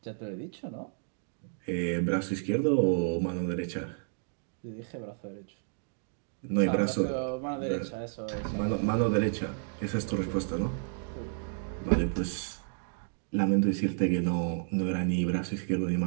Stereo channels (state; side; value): silent; left; digital silence